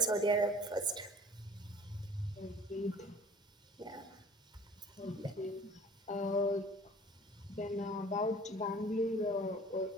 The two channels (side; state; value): both; normal; correlation 0.47